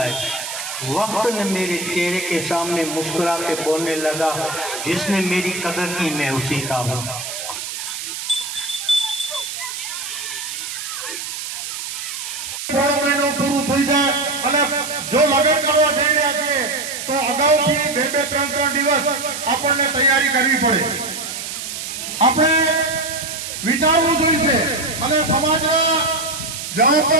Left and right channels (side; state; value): right; noise; hiss, 7 dB below the sound